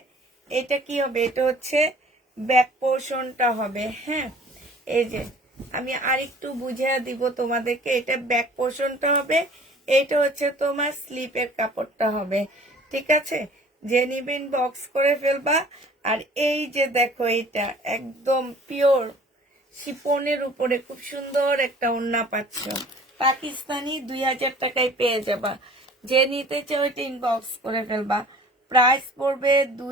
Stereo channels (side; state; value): both; normal; correlation 0.49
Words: এটা কি হবে? এটা হচ্ছে ব্যাক পোর্শনটা হবে। হ্যাঁ, এই যে আমি আরেকটু বুঝিয়ে দিব তোমাদেরকে, এটা ব্যাক পোর্শনটা হবে, এইটা হচ্ছে তোমার স্লিপের কাপড়টা হবে। ঠিক আছে, যে নিবেন বক্স করে ফেলবা। আর এই যে দেখো, এটা একদম পিওর শিফনের উপরে খুব সুন্দর একটা ওড়না পাচ্ছ, পাকিস্তানি, 2000 টাকায় পেয়ে যাবা। যে নিতে চাও এটা ইনবক্স করে ফেলবা। প্রাইস পড়বে